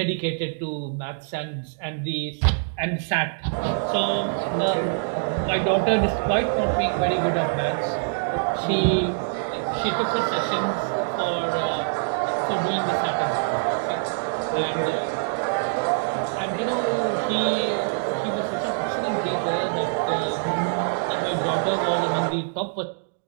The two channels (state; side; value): silent; left; digital silence